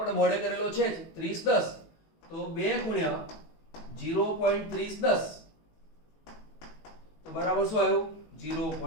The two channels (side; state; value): right; late; 18 ms